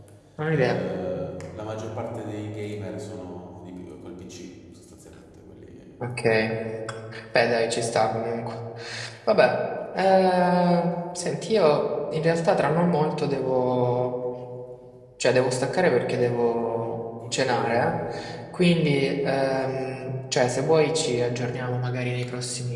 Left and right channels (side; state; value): both; identical; correlation 1.00